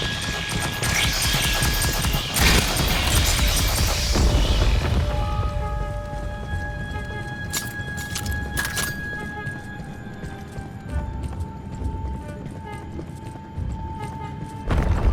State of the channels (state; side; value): identical; both; correlation 1.00